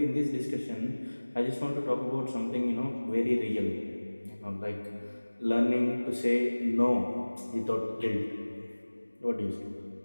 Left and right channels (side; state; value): both; inverted; correlation -1.00